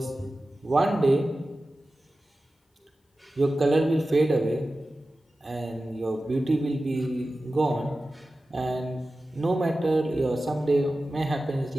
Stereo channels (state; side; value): normal; both; correlation 0.95